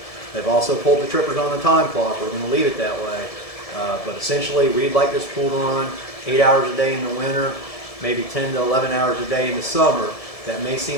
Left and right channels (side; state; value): right; late; 1.7 ms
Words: They've also pulled the trippers on the time clock. We're going to leave it that way. But essentially we'd like this pool to run 8 hours a day in the winter, maybe 10 to 11 hours a day in the summer. That may